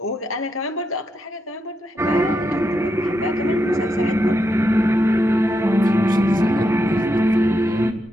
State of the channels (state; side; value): normal; both; correlation 0.83